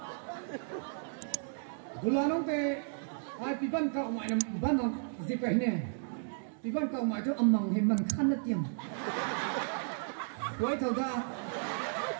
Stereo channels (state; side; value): silent; left; digital silence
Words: bulan te ai pipan kau mai nam ban nam zip kai ne pipan kau mai tu amang he man khan na tiam quay thầu ra